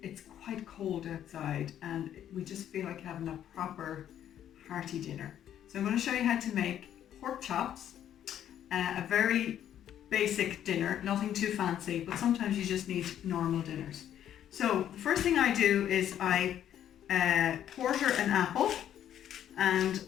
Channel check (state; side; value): quieter; right; 10.5 dB